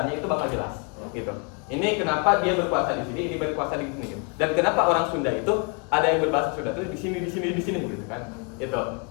itu bakal jelas gitu. Ini kenapa dia berkuasa di sini, ini berkuasa di sini gitu. Dan kenapa orang Sunda itu ada yang berbahasa Sunda itu di sini gitu kan. Itu.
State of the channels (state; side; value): quieter; right; 35.1 dB